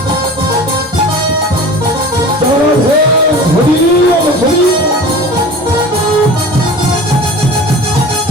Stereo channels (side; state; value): both; normal; correlation 0.38